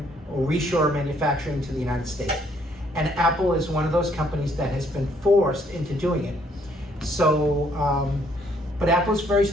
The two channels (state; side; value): normal; both; correlation 0.67